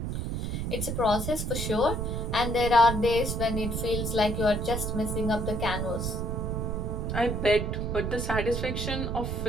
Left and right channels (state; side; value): noise; right; rumble, 2 dB below the sound